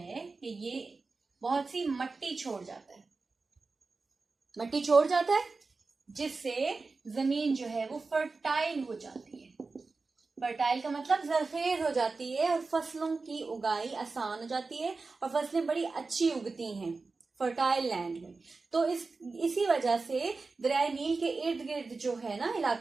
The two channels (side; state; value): left; quieter; 4.0 dB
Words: कि ये बहुत सी मट्टी छोड़ जाता है, मट्टी छोड़ जाता है, जिससे जमीन जो है वो फर्टाइल हो जाती है। फर्टाइल का मतलब जरखेज हो जाती है और फसलों की उगाई आसान हो जाती है और फसलें बड़ी अच्छी उगती हैं फर्टाइल लैंड में। तो इसी वजह से दरियाए नील के इर्द गिर्द जो है ना